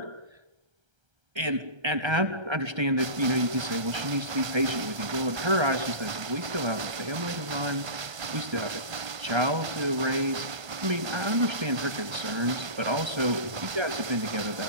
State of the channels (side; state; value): left; late; 1.3 ms